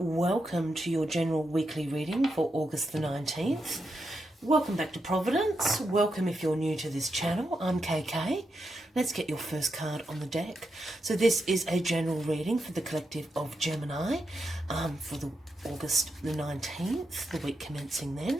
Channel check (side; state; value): both; normal; correlation 0.85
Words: to your general weekly reading for August the 19th. Welcome back to Providence. Welcome if you're new to this channel. I'm KK. Let's get your first card on the deck. So this is a general reading for the collective of Gemini for the August the 19th, the week commencing then.